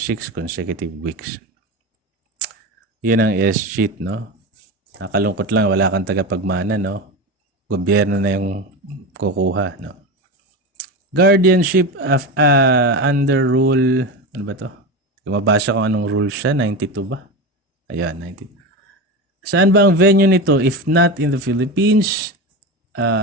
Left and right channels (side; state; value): both; normal; correlation 0.22